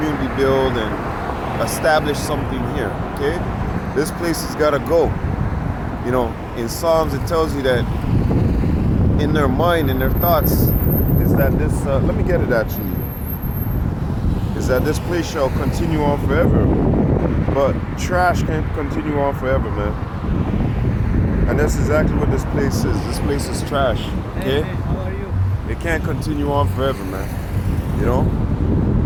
build and establish something here, okay? This place has got to go. In Psalms it tells you that in their mind, in their thoughts, is that this, let me get it actually, is that this place shall continue on forever. But trash can't continue on forever, man. And that's exactly what this place is. This place is trash, okay? Hey, how are you? It can't continue on forever, man.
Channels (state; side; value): identical; both; correlation 1.00